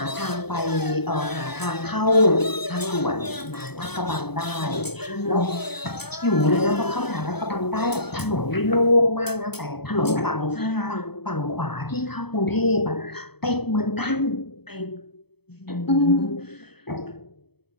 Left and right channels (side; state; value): right; late; 0.97 ms